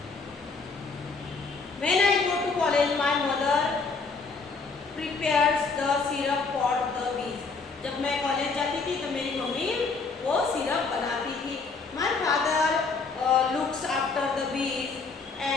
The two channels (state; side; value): quieter; right; 4.4 dB